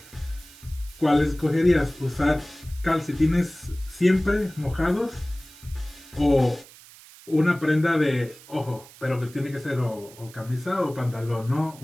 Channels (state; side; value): noise; right; hiss, 21 dB below the sound